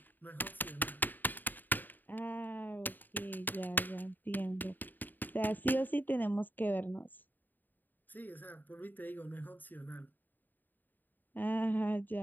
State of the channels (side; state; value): right; late; 0.089 ms